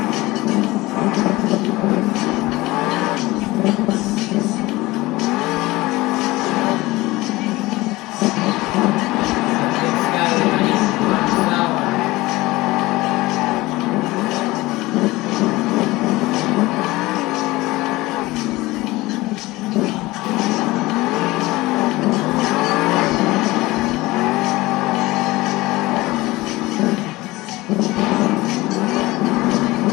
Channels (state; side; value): quieter; right; 20.0 dB